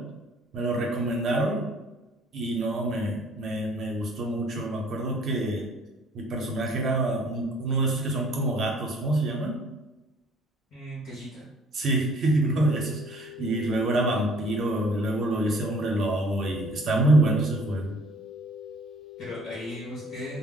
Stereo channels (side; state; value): both; normal; correlation 0.56